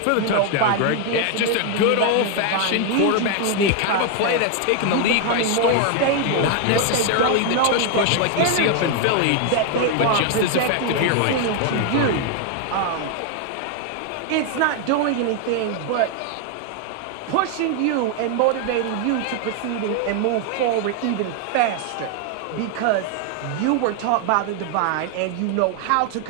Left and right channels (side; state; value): both; different; correlation 0.01